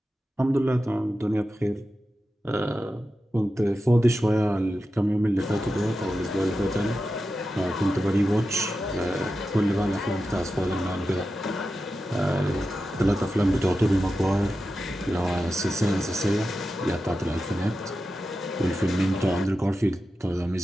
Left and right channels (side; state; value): both; normal; correlation 0.91